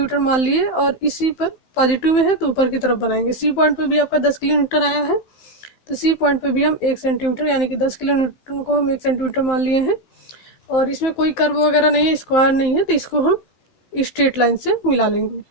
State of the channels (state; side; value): late; right; 15 ms